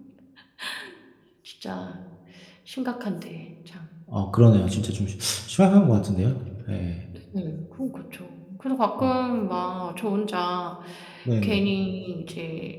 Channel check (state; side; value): identical; both; correlation 1.00